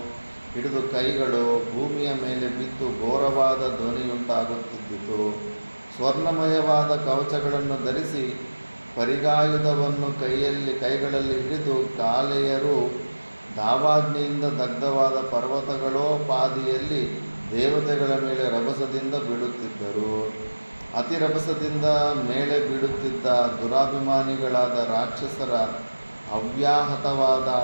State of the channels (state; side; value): inverted; both; correlation -1.00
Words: ಹಿಡಿದು ಕೈಗಳು ಭೂಮಿಯ ಮೇಲೆ ಬಿದ್ದು ಘೋರವಾದ ಧ್ವನಿಯುಂಟಾಗುತ್ತಿದ್ದಿತು. ಸ್ವರ್ಣಮಯವಾದ ಕವಚಗಳನ್ನು ಧರಿಸಿ ಪರಿಗಾಯುಧವನ್ನು ಕೈಗಳಲ್ಲಿ ಹಿಡಿದು ಕಾಲೆಯರು ದಾವಾಗ್ನಿಯಿಂದ ದಗ್ಧವಾದ ಪರ್ವತಗಳೋಪಾದಿಯಲ್ಲಿ ದೇವತೆಗಳ ಮೇಲೆ ರಭಸದಿಂದ ಬೀಳುತ್ತಿದ್ದರು. ಅತಿ ರಭಸದಿಂದ ಮೇಲೆ ಬೀಳುತ್ತಿದ್ದ ದುರಾಭಿಮಾನಿಗಳಾದ ರಾಕ್ಷಸರ ಅವ್ಯಾಹತವಾದ